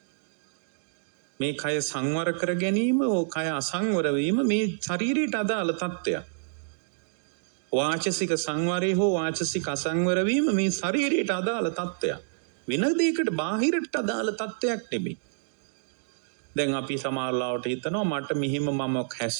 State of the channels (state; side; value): silent; left; digital silence